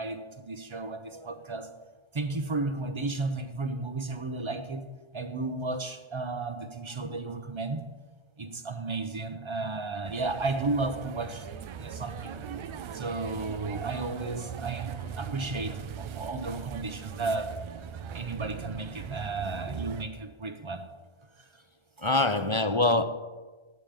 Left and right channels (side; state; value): left; late; 1.3 ms